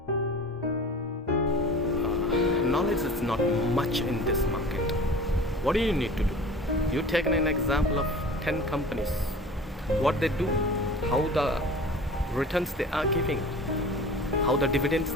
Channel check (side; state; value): both; normal; correlation 0.40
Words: Knowledge is not much in this market. What do you need to do? You take an example of 10 companies, what they do, how the returns they are giving, how the dividends